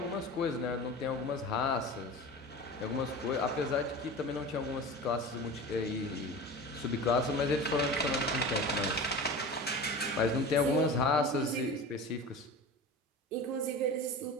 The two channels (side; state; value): both; normal; correlation 0.33